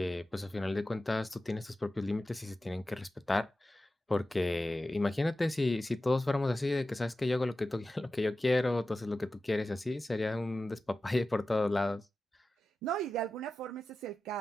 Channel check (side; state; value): both; normal; correlation 0.94